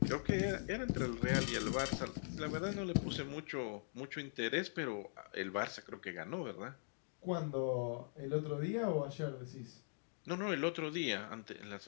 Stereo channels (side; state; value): right; silent; digital silence